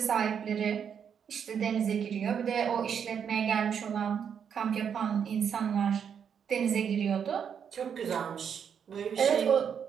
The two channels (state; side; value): quieter; left; 7.6 dB